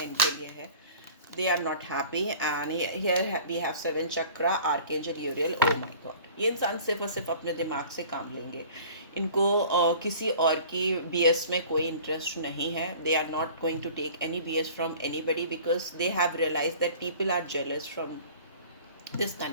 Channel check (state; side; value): inverted; both; correlation -0.45